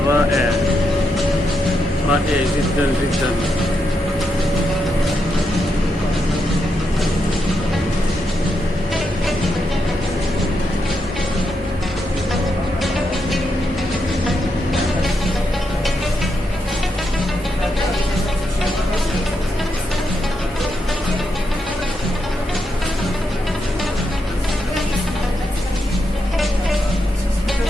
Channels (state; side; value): normal; both; correlation 0.82